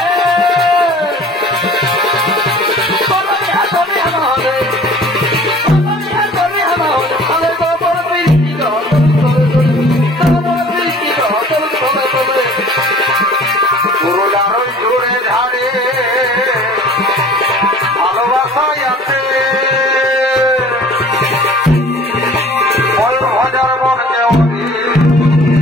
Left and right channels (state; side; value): normal; both; correlation 0.48